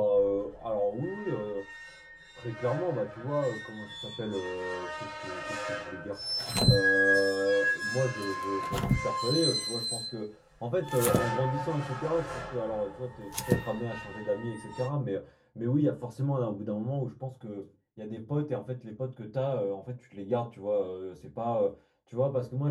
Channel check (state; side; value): identical; both; correlation 1.00